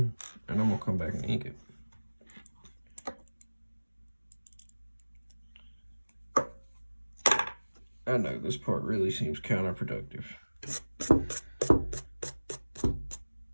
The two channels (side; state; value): both; inverted; correlation -1.00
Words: and I'm gonna come back and ink it. I know this part really seems counterproductive.